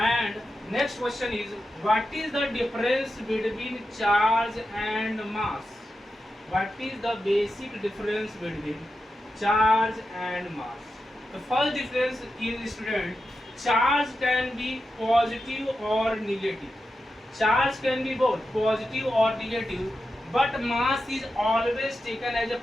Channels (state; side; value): normal; both; correlation 0.90